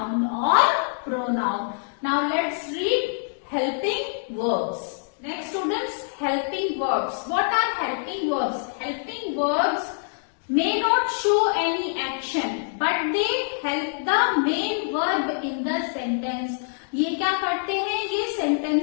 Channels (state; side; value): silent; right; digital silence